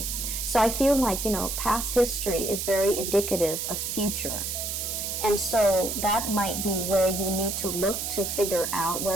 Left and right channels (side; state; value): right; noise; hiss, 3 dB below the sound